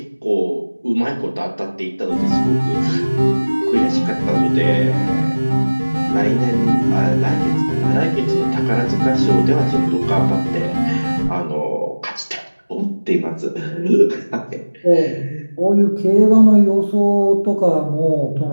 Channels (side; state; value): both; inverted; correlation -1.00